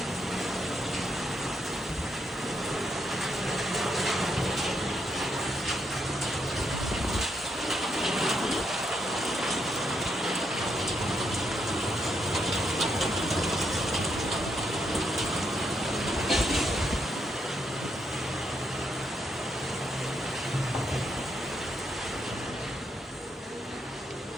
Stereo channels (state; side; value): normal; both; correlation 0.79